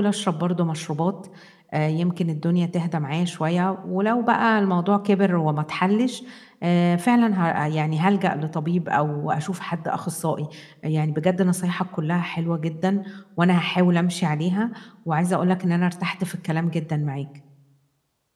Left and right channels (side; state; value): both; identical; correlation 1.00